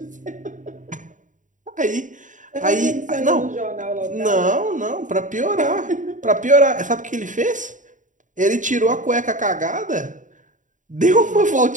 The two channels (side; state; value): left; late; 0.37 ms